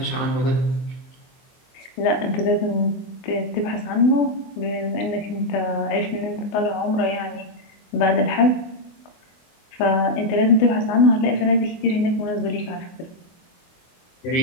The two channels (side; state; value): right; late; 24 ms